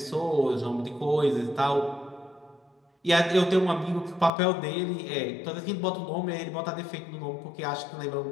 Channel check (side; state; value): right; drops out; at 4.3 s